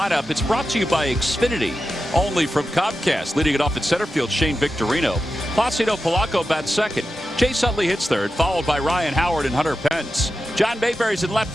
It's brought to you by Xfinity, only from Comcast. Leading it off at center field, Shane Victorino. Placido Polanco bats second. Chase Utley hits third, followed by Ryan Howard and Hunter Pence. John Mayberry's in left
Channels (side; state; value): both; normal; correlation 0.91